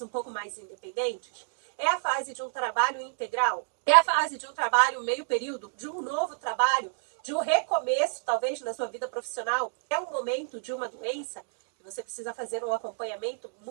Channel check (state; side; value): silent; left; digital silence